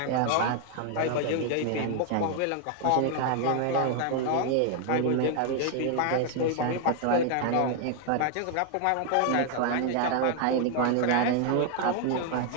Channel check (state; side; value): different; both; correlation 0.00